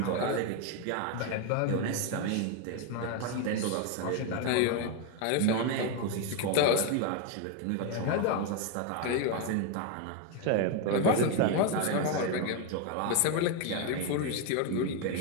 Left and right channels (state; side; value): different; both; correlation 0.01